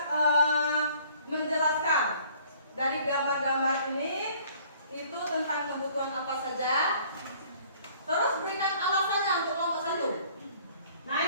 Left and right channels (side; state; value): both; inverted; correlation -0.56